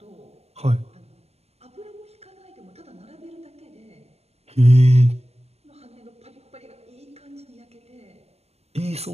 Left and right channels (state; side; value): late; left; 0.30 ms